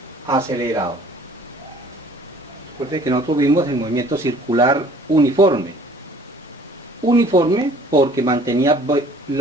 acelerado. Recuerden que nosotros vimos el movimiento circular uniforme. Uniforme porque mantenía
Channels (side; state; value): both; normal; correlation 0.53